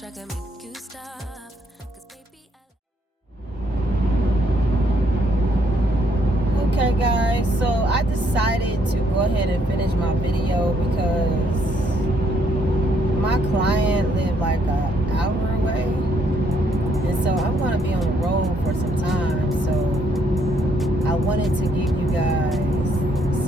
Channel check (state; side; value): normal; both; correlation 0.71